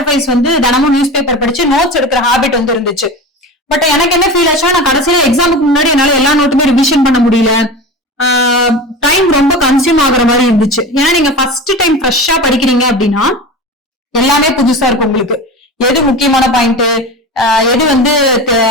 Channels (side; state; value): both; normal; correlation 0.30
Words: அஃபேர்ஸ் வந்து தினமும் நியூஸ் பேப்பர் படிச்சு நோட்ஸ் எடுக்கிற ஹாபிட் வந்து இருந்துச்சு. பட் எனக்கு என்ன ஃபீல் ஆச்சுன்னா நான் கடைசியில எக்ஸாமுக்கு முன்னாடி என்னால எல்லா நோட்டுமே ரிவிஷன் பண்ண முடியல. டைம் ரொம்ப கன்சியூம் ஆகுற மாதிரி இருந்துச்சு. ஏன்னா நீங்க ஃபர்ஸ்ட் டைம் ஃப்ரெஷ்ஷா படிக்கிறீங்க அப்படின்னா எல்லாமே புதுசா இருக்கும் உங்களுக்கு. எது முக்கியமான பாயிண்ட், எது வந்து